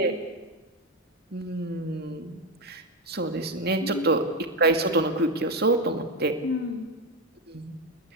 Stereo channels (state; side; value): normal; both; correlation 0.11